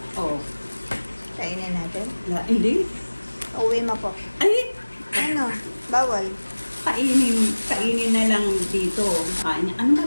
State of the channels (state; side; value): inverted; both; correlation -1.00